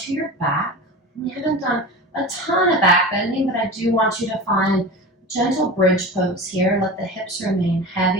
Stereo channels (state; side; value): normal; both; correlation 0.31